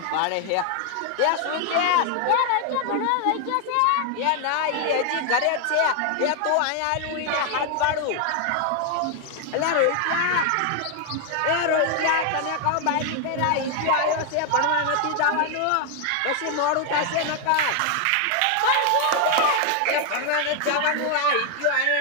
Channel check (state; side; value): different; both; correlation 0.00